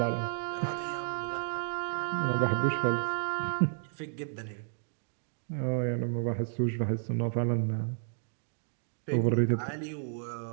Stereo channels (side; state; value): left; silent; digital silence